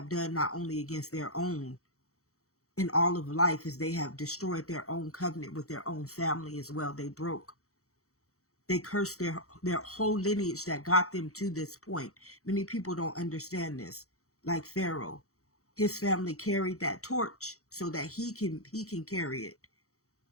done not only against their own in all of life is they have destroyed their own covenant with their own family as well. They cursed their whole lineage that got them to this point. Many people don't understand this. Like Pharaoh, his family carried that torch so that he can carry it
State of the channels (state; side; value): late; right; 0.65 ms